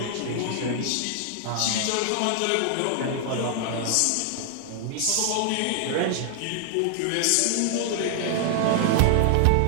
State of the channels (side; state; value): both; different; correlation -0.01